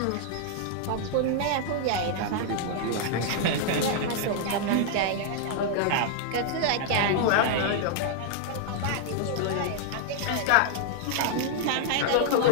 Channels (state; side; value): different; both; correlation 0.00